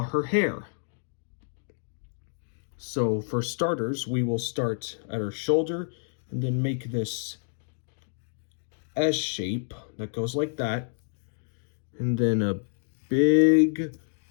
her hair. So for starters, we will start at her shoulder and then make this S shape that goes like that. And then a big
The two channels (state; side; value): silent; right; digital silence